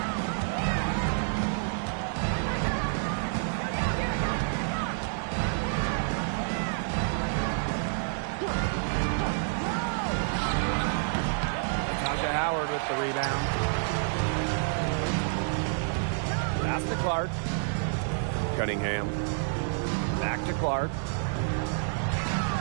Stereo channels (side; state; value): left; silent; 59 dB below the other